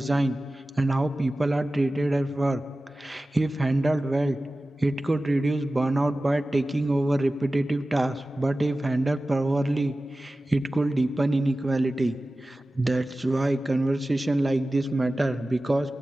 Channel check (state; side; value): normal; both; correlation 0.96